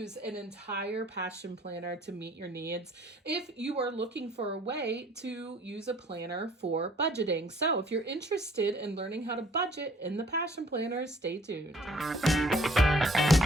an entire Passion Planner to meet your needs if you are looking for a way to use a planner for budgeting. So if you're interested in learning how to budget in the Passion Planner, stay tuned.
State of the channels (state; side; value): normal; both; correlation 0.57